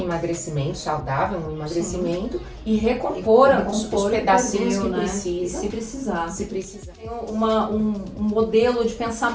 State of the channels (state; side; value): identical; both; correlation 1.00